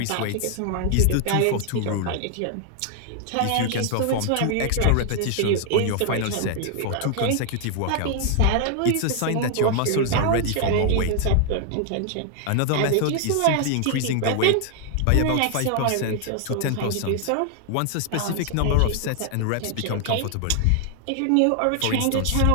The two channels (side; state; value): both; different; correlation 0.00